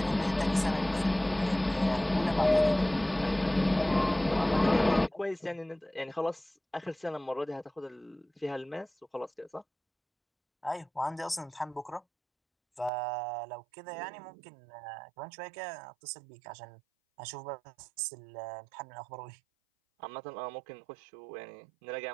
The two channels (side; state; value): left; drops out; at 12.9 s